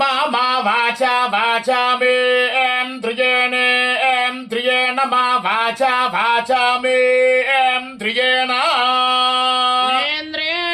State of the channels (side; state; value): both; identical; correlation 1.00